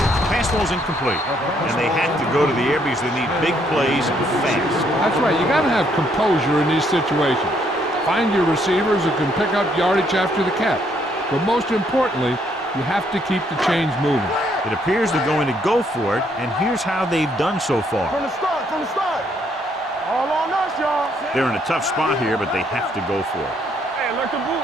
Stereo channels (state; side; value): normal; both; correlation 0.70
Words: Pass ball's incomplete. And they have to go to the air because they need big plays fast. That's right. You got to have composure in these situations. Find your receivers who can pick up yardage after the catch. But most importantly, you have to keep the chains moving. It appears they're going to go for it, and here's how they've done so far. From the start, from the start. All on us, y'all. They're in a tough spot here, but they have to go for it. Hey, like the boot,